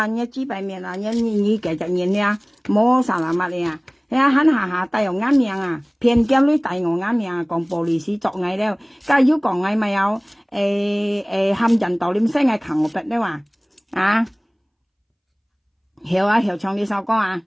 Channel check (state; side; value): identical; both; correlation 1.00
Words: 知白面你繼續演冇實物嚟肯下帶有啱命偏見女帶我啱命講玻璃師作藝了家要講藝咪有冚人道念聲係強我筆咧話曉唱呢首歌